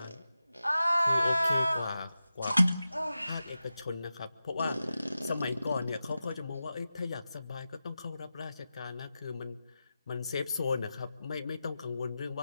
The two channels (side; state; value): both; inverted; correlation -0.93